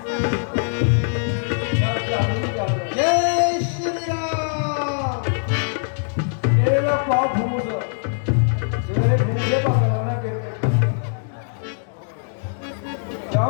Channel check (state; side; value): silent; right; digital silence